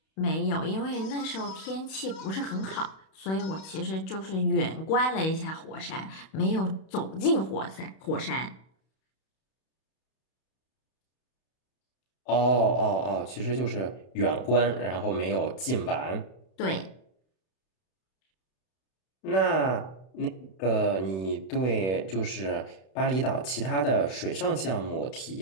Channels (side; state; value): right; late; 31 ms